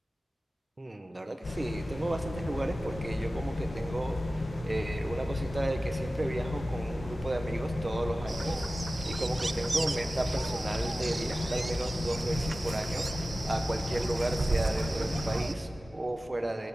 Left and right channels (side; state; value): both; normal; correlation 0.95